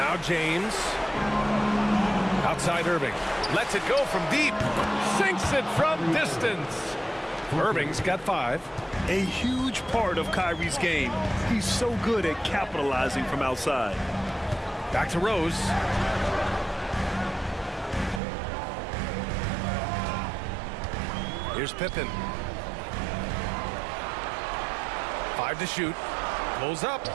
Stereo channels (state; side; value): drops out; left; at 18.2 s